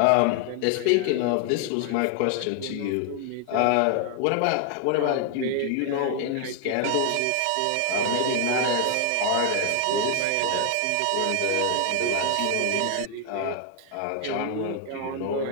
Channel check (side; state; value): both; different; correlation 0.00